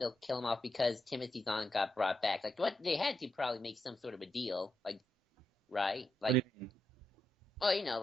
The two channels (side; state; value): both; normal; correlation 0.84